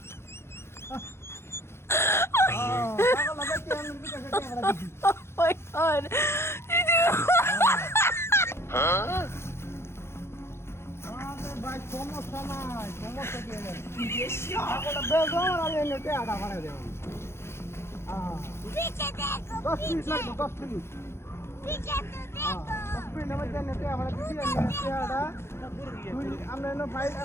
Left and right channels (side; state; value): right; late; 0.12 ms